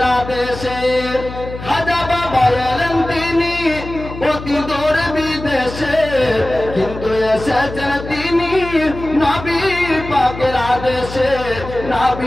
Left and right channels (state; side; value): noise; left; hum, 11 dB below the sound